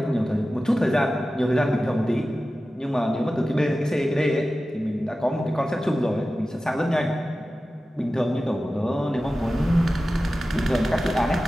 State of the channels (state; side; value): normal; both; correlation 0.95